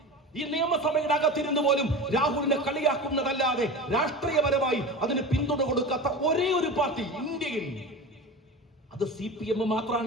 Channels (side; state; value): both; normal; correlation 0.30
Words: ഈ നിയമസഭയുടെ അകത്തിരുന്ന് പോലും രാഹുലിനെ കളിയാക്കുന്നതല്ലാതെ രാഷ്ട്രീയപരമായി അതിന് പിന്തുണ കൊടുക്കാത്ത ഒരേ ഒരു പാർട്ടി ഇന്ത്യയിൽ, അത് CPM